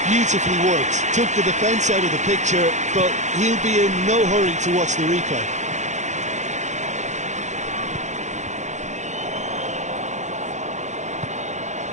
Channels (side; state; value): left; late; 0.34 ms